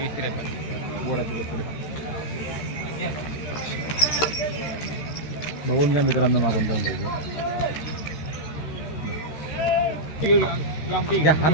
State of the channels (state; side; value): late; right; 13 ms